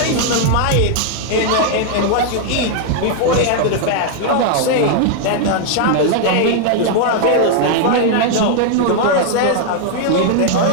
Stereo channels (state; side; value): different; both; correlation 0.00